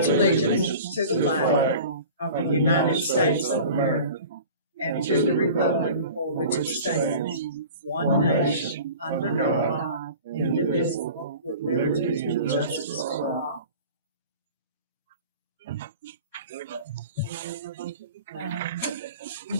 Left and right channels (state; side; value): inverted; both; correlation -0.40